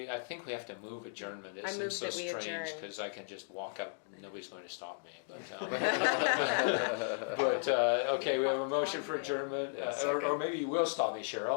I think we have to move adjournment. It I seems move so that we strange adjourn. because I can just walk up. Nobody's going to stop me. But, okay, we have a motion for adjournment, or maybe you will stop me,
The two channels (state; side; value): silent; right; digital silence